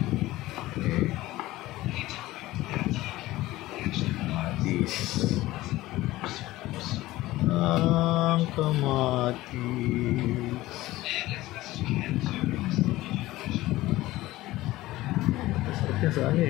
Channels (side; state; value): right; quieter; 17.3 dB